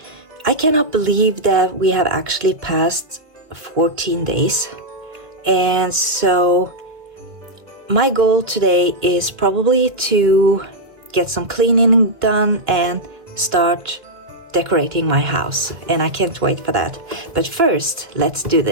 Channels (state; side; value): late; left; 2.0 ms